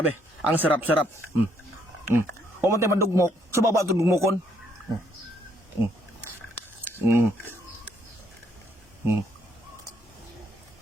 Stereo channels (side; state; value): both; normal; correlation 0.69